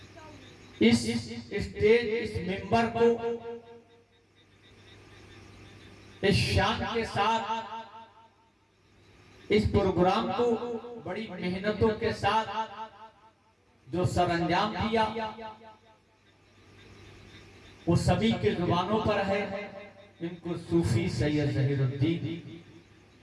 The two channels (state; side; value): identical; both; correlation 1.00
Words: اس اسٹیج اس ممبر کو اس شان کے ساتھ اس پروگرام کو بڑی محنتوں کے ساتھ جو سر انجام دیا وہ سبھی کے زبانوں پر ہے۔ ان کو صوفی سید ظہیر الدین